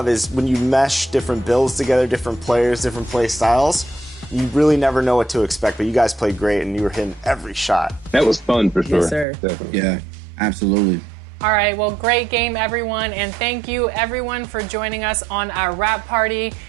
is when you mesh different builds together, different players, different play styles. You really never know what to expect, but you guys played great, and you were hitting every shot. That was fun for sure. Yes, sir. Definitely. Yeah, absolutely. All right, well, great game, everyone, and thank you, everyone, for joining us on our wrap party.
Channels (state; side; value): drops out; left; at 9.2 s